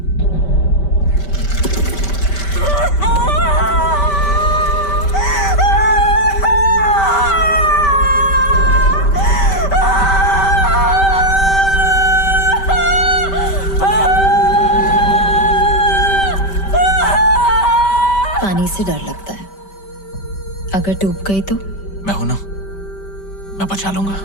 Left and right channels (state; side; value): late; right; 5.1 ms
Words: पानी से डर लगता है, अगर डूब गई तो? मैं हूं ना, मैं बचा लूंगा।